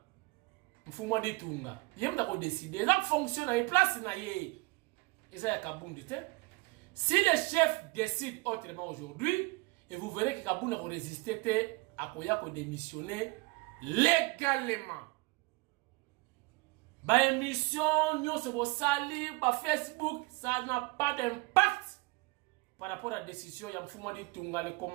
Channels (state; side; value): quieter; left; 24.7 dB